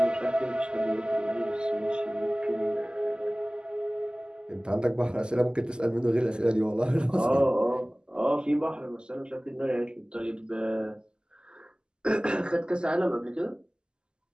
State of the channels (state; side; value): late; left; 0.047 ms